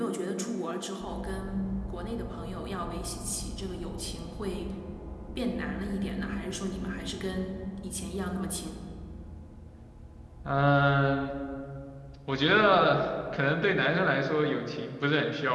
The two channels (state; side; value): identical; both; correlation 1.00